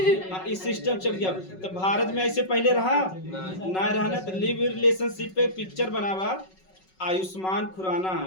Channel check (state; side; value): late; right; 5.4 ms